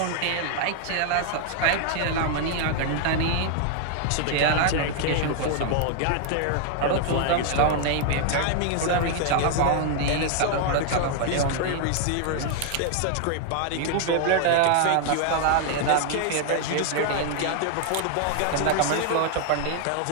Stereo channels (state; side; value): different; both; correlation 0.00